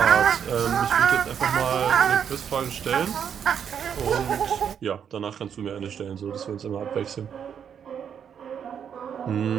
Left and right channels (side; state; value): left; quieter; 8.0 dB